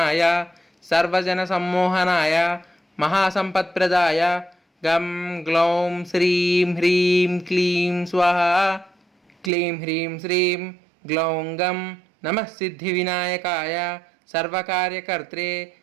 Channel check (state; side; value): drops out; left; at 9.5 s